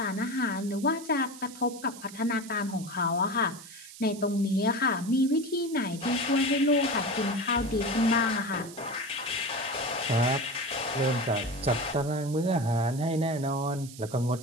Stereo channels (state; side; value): noise; right; hiss, 16 dB below the sound